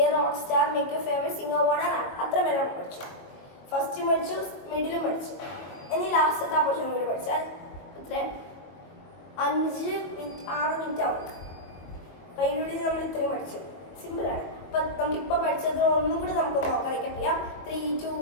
a rock star. Make your favourite singer on a rap. അത്ര പേരെ നമ്മൾ പഠിച്ചു. ഫസ്റ്റും പഠിച്ചു, മിഡിലും പഠിച്ചു. ഇനി ലാസ്റ്റത്തെ ആ പോർഷൻ കൂടി പഠിച്ചാൽ എത്ര 5 മിനിറ്റ് 6 മിനിറ്റ് ആവും. അപ്പം അതിനുള്ളിൽ നമ്മൾ ഇത്രയും പഠിച്ചു. സിമ്പിളാണ്. അപ്പം നമുക്കിപ്പോൾ പഠിച്ചത് ഒന്നും കൂടി നമുക്ക് നോക്കാൻ അറിയാം. 3, 2,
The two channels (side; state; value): right; late; 22 ms